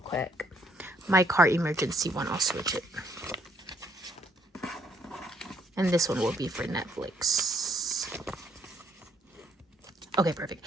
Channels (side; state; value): both; normal; correlation 0.69